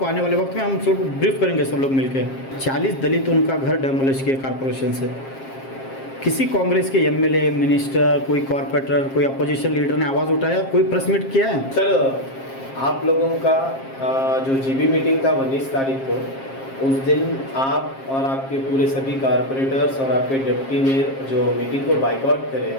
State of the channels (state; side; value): late; right; 7.5 ms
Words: आने वाले वक्त में हम सब ब्रीफ करेंगे सब लोग मिलकर। 40 दलित उनका घर डेमोलिश किए कॉरपोरेशन से। किसी कांग्रेस के एमएलए, मिनिस्टर, कोई कॉर्पोरेटर, कोई अपोजिशन लीडर ने आवाज़ उठाया, कोई प्रेस मीट किया है? सर, आप लोगों का जो जीबी मीटिंग था 19 तारीख को, उस दिन आप और आपके पूरे सभी कारपोरेटर्स और आपके डिप्टी मेयर जो मीटिंग को बाइकआउट करे